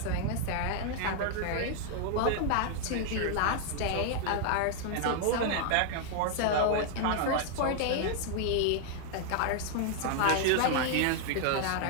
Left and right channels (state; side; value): different; both; correlation 0.00